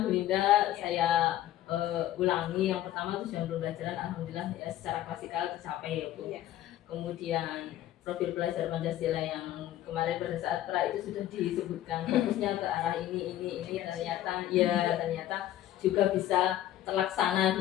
Bu Linda. Saya ulangi, yang pertama tujuan pembelajaran alhamdulillah ya secara klasikal tercapai ya Bu. Kemudian profil pelajar Pancasila yang kemarin pada saat pra itu sudah disebutkan, fokusnya ke arah ini ternyata juga bisa terlaksana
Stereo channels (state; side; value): quieter; right; 13.1 dB